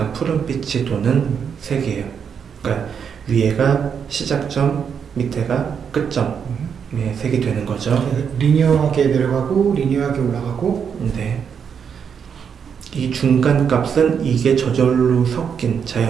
푸른빛이 도는 색이에요. 그러니까 위에가 시작점, 밑에가 끝점의 색이 되는 거죠. 리니어하게 내려가고 리니어하게 올라가고. 네. 이 중간 값은 이게 저절로 섞인,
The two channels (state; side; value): quieter; left; 7.2 dB